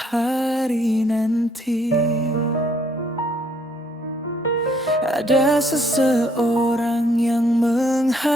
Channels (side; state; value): both; normal; correlation 0.66